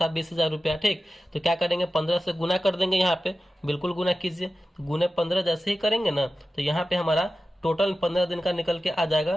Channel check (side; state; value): both; normal; correlation 0.94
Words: 20,000 रुपया। ठीक, तो क्या करेंगे, 15 से गुना कर देंगे। यहाँ पे बिल्कुल गुना कीजिए, गुने 15 जैसे ही करेंगे ना तो यहाँ पे हमारा टोटल 15 दिन का निकल के आ